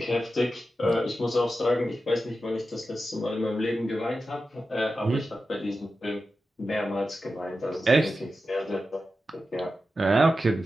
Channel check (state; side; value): normal; both; correlation 0.91